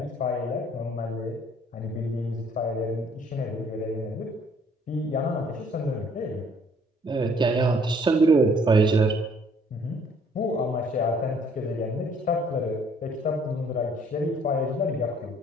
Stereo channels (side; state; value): both; normal; correlation 0.61